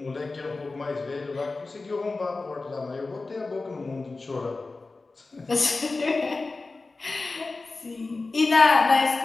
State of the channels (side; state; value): right; quieter; 3.6 dB